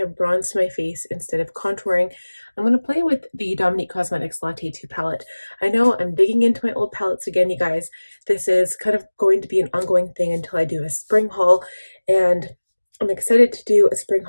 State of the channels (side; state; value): both; inverted; correlation -1.00